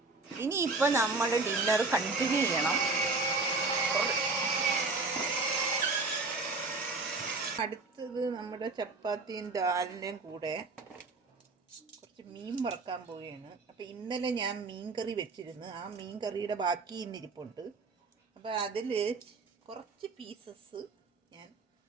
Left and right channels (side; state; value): left; quieter; 3.7 dB